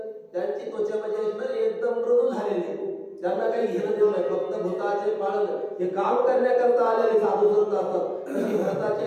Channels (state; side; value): identical; both; correlation 1.00